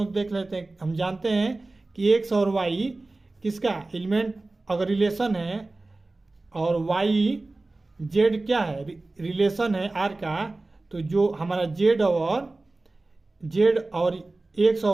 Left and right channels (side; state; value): left; quieter; 3.1 dB